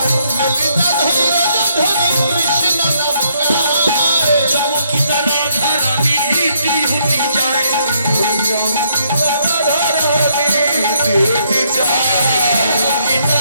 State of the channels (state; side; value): inverted; both; correlation -0.72